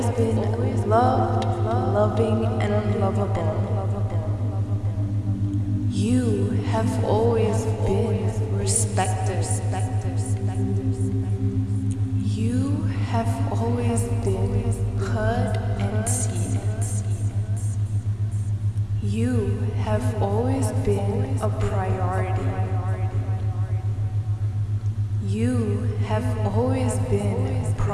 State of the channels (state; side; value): identical; both; correlation 1.00